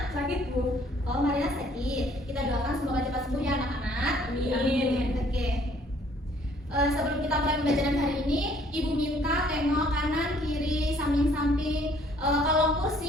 Sakit Bu. Oh, Marina sakit. Kita doakan semoga cepat sembuh ya anak-anak. Amin. Oke. Sebelum kita mulai pembelajaran hari ini, Ibu minta tengok kanan, kiri, samping-samping. Kalau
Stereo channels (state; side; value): normal; both; correlation 0.60